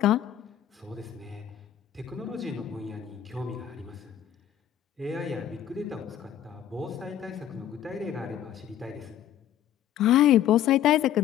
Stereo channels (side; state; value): right; quieter; 10.7 dB